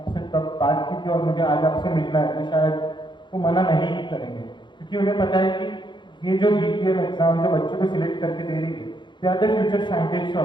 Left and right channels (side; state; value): right; late; 0.22 ms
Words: तब बात की थी और मुझे आज आपसे मिलना है, तो शायद वो मना नहीं ही करेंगे, क्योंकि उन्हें पता है कि ये जो VVM एग्जाम जो बच्चों को सिलेक्ट करके दे रही है, they are the future scientist